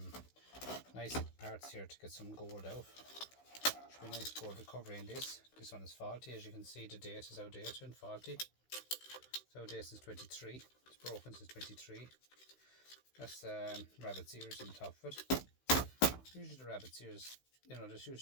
nice parts here to get some gold out. Should be nice gold recovery in this. This one is faulty, as you can see. The date is outdated and faulty. It's outdated since 23. It's broken since 23. That's rabbit's ears on the top of it. Usually the rabbit's ears, you know, there's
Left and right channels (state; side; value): late; right; 16 ms